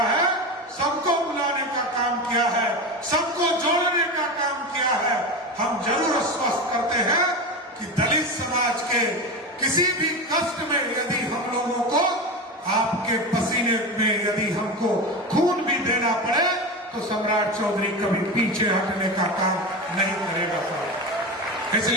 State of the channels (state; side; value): normal; both; correlation 0.23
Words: है, सबको बुलाने का काम किया है, सबको जोड़ने का काम किया है, हम जरूर आश्वस्त करते हैं कि दलित समाज के किसी भी कष्ट में यदि हम लोगों को आपके पसीने में यदि हमको खून भी देना पड़े तो सम्राट चौधरी कभी पीछे हटने का काम नहीं करेगा।